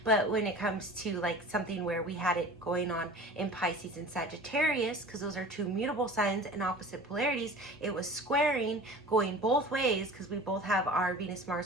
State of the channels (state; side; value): normal; both; correlation 0.40